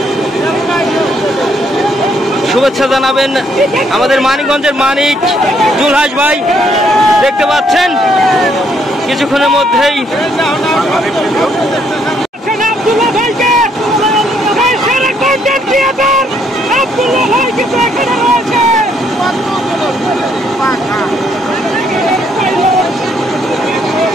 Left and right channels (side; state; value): both; normal; correlation 0.70